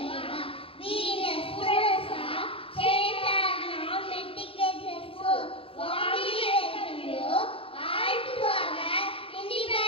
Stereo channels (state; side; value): late; right; 0.27 ms